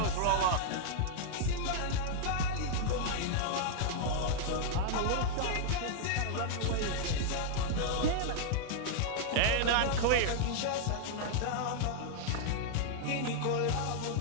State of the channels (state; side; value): different; both; correlation -0.01